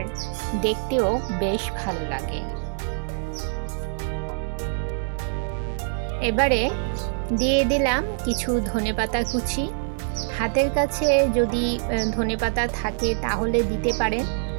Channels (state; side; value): silent; left; 62 dB below the other